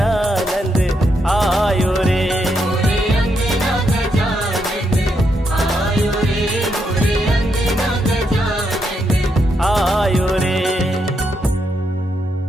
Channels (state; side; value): normal; both; correlation 0.80